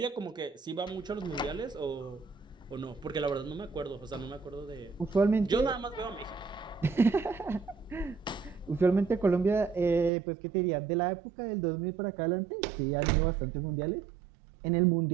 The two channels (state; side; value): drops out; left; at 10.1 s